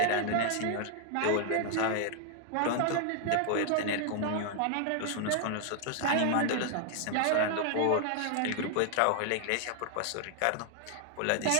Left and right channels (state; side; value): different; both; correlation 0.00